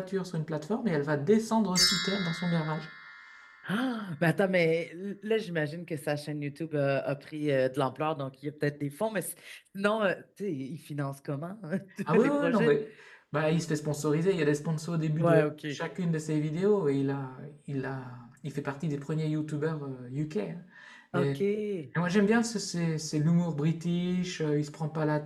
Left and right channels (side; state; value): both; identical; correlation 1.00